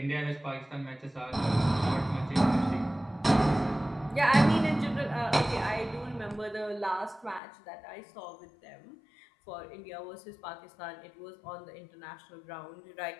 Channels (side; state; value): right; drops out; at 7.4 s